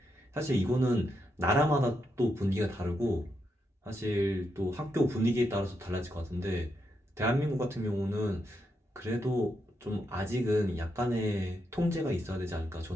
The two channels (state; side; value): normal; both; correlation 0.82